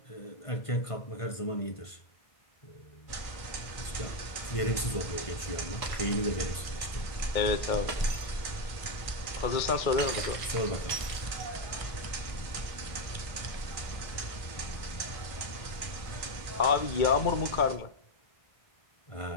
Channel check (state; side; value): late; right; 1.5 ms